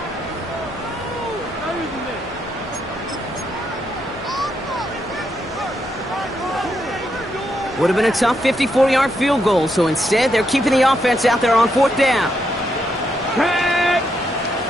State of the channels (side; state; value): both; normal; correlation 0.79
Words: Would have been a tough 54-yard field goal, so instead they're keeping the offense out there on 4th down.